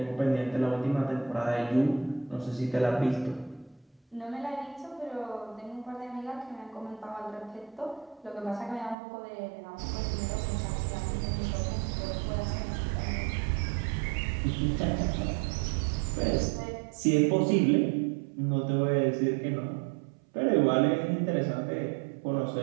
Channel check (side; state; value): left; drops out; at 9.0 s